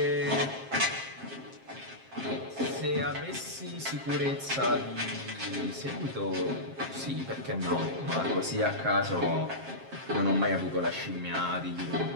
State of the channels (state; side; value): late; left; 7.5 ms